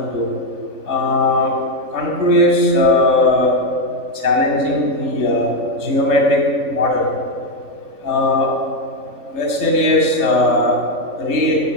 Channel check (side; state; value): left; late; 3.3 ms